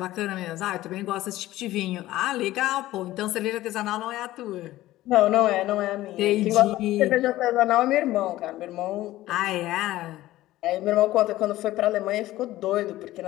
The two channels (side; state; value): right; quieter; 15.9 dB